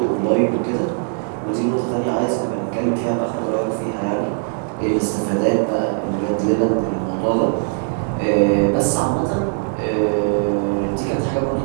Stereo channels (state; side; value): silent; left; 63 dB below the other